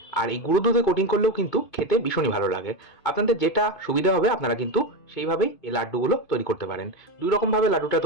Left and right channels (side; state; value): right; late; 2.5 ms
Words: আর এই গুঁড়ো দুধে কোটিং করলেও কিন্তু খেতে ভীষণই ভালো লাগে। আপনাদের যেটা সুবিধা হবে আপনারা কিন্তু সেইভাবেই এই লাড্ডুগুলো তৈরি করতে পারেন। 2 রকমভাবে লাড্ডুটা